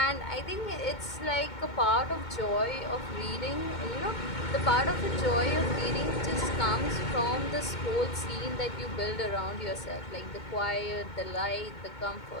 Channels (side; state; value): right; late; 2.2 ms